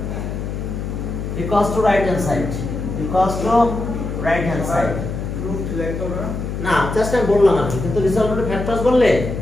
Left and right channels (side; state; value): left; noise; hum, 5 dB below the sound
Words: equals to right hand side, equals to right hand side. Proof like over. না জাস্ট আমি বললাম আর কি, কিন্তু রিজলভেন্ট ফ্যাক্টরস বললে